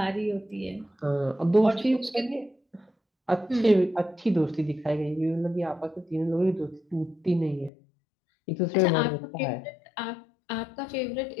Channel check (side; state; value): right; drops out; at 7.7 s